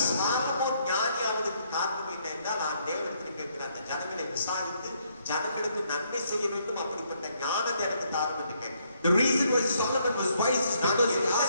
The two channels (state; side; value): inverted; both; correlation -0.71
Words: Solomon ஞானியாவதற்கு காரணம் என்ன என்றால், நான் தேவனிடத்தில் கேட்கிற அந்த ஜனங்களை விசாரித்து ஜனங்களுக்கு நன்மை செய்ய வேண்டும், அப்படிப்பட்ட ஞானத்தை எனக்கு தாரும் என்று கேட்கிறேன். The reason why Solomon was wise is because he